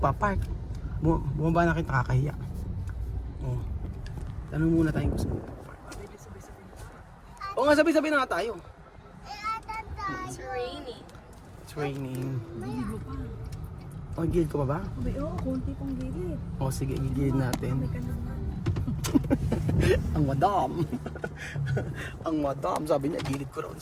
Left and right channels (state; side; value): identical; both; correlation 1.00